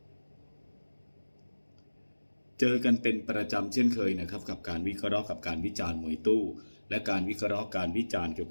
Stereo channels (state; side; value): inverted; both; correlation -1.00